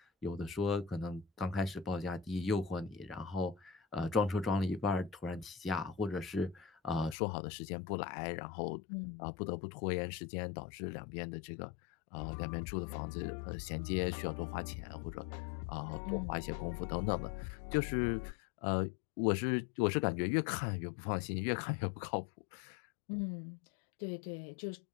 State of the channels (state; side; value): drops out; right; at 7.2 s